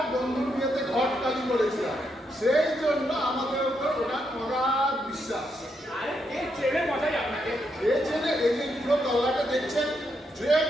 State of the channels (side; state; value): both; normal; correlation 0.80